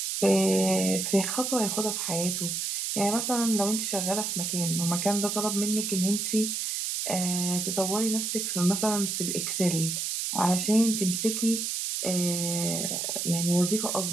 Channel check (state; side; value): noise; right; hiss, 2 dB below the sound